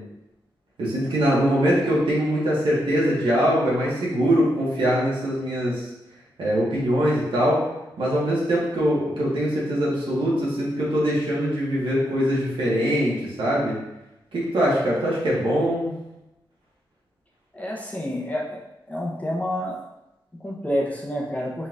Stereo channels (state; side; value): normal; both; correlation 0.80